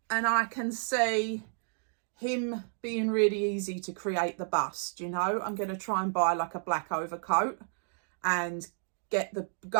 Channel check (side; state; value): left; silent; digital silence